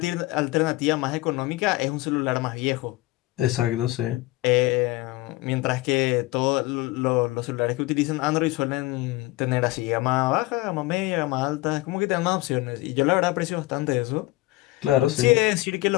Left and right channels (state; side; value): quieter; right; 19.7 dB